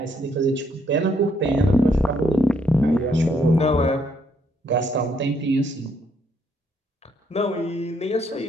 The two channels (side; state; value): both; normal; correlation 0.71